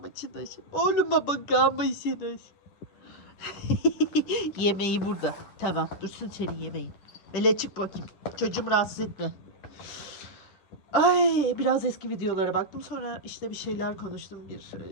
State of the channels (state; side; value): late; right; 10 ms